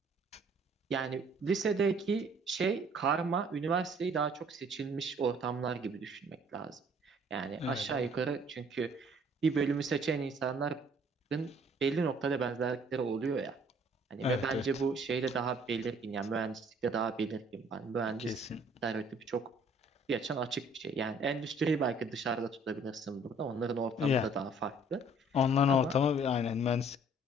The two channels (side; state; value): both; normal; correlation 0.58